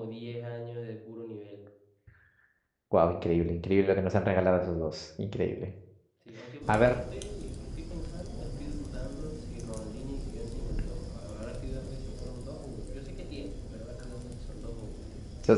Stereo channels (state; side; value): identical; both; correlation 1.00